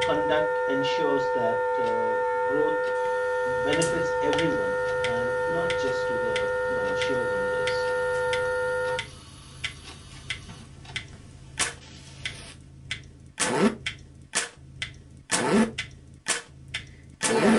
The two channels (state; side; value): identical; both; correlation 1.00